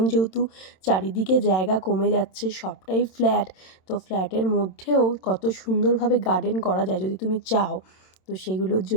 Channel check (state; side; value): late; right; 27 ms